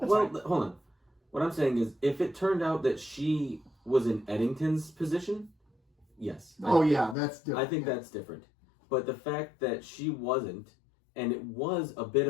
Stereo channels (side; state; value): right; drops out; at 7.2 s